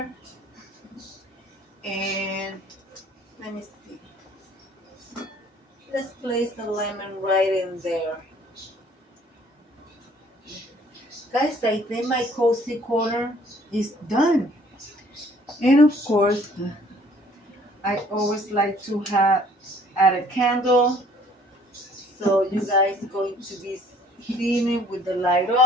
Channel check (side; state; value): both; normal; correlation 0.57